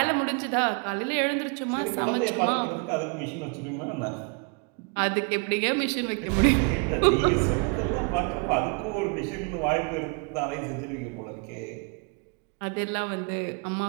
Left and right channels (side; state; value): left; quieter; 34.5 dB